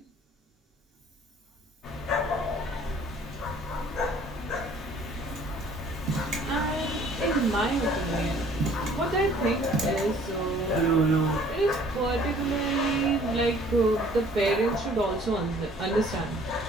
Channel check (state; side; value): normal; both; correlation 0.55